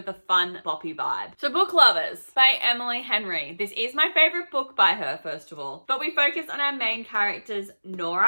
a fun boppy vibe. So Book Lovers by Emily Henry. This is my favorite book by her, first of all, but we focus on our main characters,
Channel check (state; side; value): inverted; both; correlation -1.00